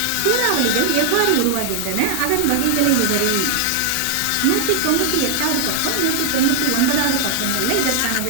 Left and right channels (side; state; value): both; different; correlation 0.00